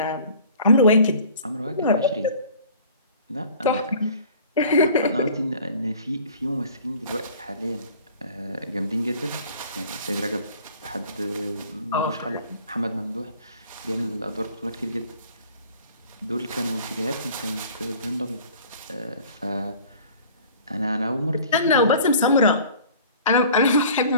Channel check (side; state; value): both; inverted; correlation -0.48